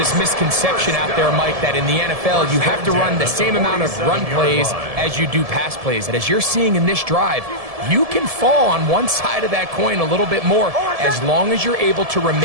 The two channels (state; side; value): late; left; 1.7 ms